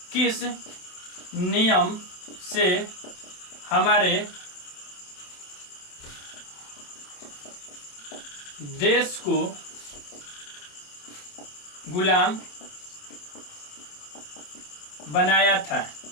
किस नियम से हमारे देश को गुलाम बनाया था।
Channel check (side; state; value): right; late; 27 ms